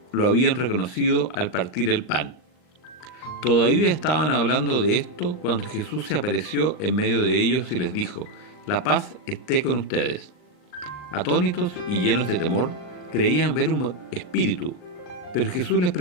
lo habían reconocido al partir el pan. Todavía estaban hablando de esto cuando Jesús se apareció en medio de ellos y les dijo: «La paz esté con ustedes». Atónitos y llenos de temor, creían ver un espíritu, pero Jesús les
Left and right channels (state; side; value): late; right; 39 ms